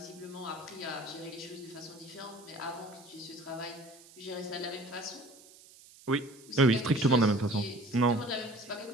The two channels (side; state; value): right; noise; hiss, 22 dB below the sound